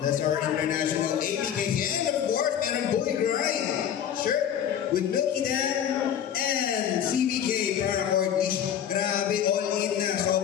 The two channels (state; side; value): quieter; right; 9.3 dB